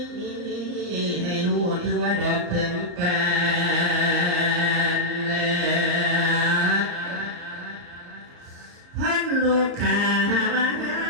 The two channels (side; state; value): left; late; 34 ms